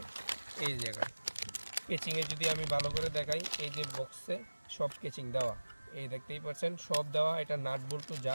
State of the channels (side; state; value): both; inverted; correlation -1.00